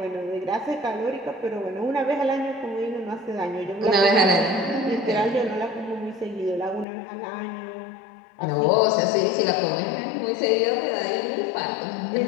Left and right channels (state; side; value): drops out; right; at 6.9 s